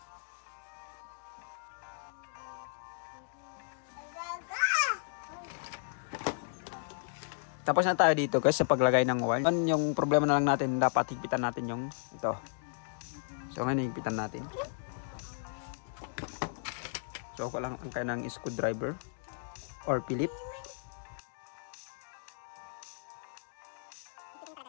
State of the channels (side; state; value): right; silent; digital silence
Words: Tapos na tayo dito guys sa paglagay ng wire. Yung problema na lang natin, dapat higpitan natin yung ito. So, ngayon higpitan natin. So lang ang kanang screwdriver or Philip.